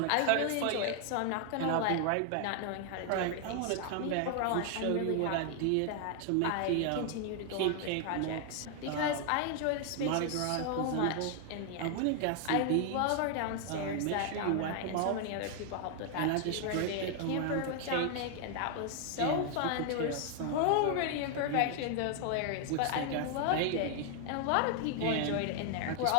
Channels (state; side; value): different; both; correlation 0.00